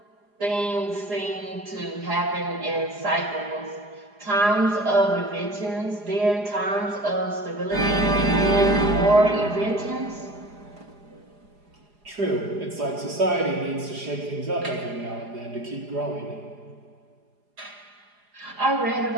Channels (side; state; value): left; late; 4.8 ms